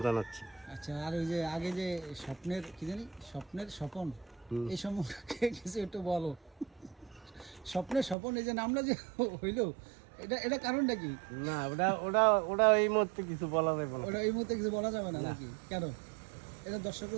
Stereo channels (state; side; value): drops out; left; at 8.2 s